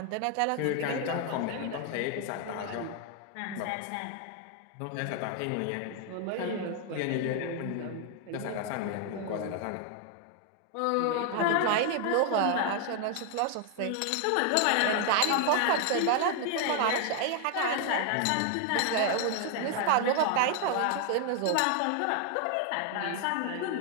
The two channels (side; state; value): both; different; correlation 0.00